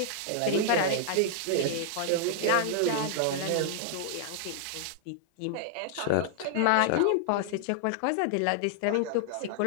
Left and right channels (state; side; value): different; both; correlation -0.01